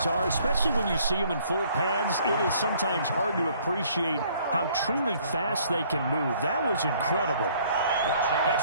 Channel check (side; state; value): both; inverted; correlation -0.60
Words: are, especially when you see them in full pads, it is sometimes hard to appreciate how truly fast they can move. That was incredible.